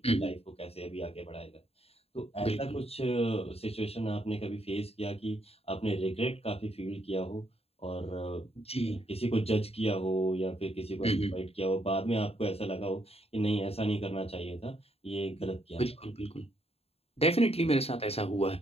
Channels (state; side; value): late; right; 0.29 ms